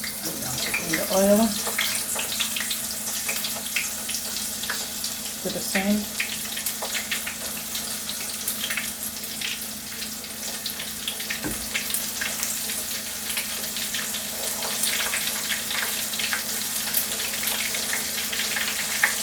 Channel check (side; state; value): both; identical; correlation 1.00